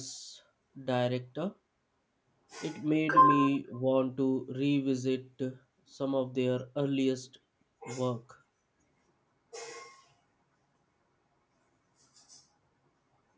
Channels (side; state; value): both; identical; correlation 1.00